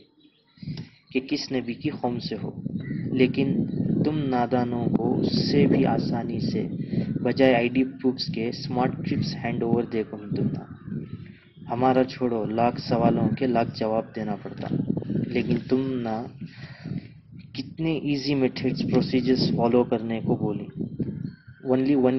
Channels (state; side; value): identical; both; correlation 1.00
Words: کہ کس نبی کی قوم سے ہو. لیکن تم نادانوں کو اس سے بھی آسانی سے بجائے آئی ڈی پروفز کے اسمارٹ ٹرپس ہینڈ اوور دیکھو تم نہ. ہمارا چھوڑو، لاکھ سوالوں کے لاکھ جواب دینا پڑتا، لیکن تم نہ کتنے ایزی میتھڈز پروسیجرز فالو کرنے کو بولی. Only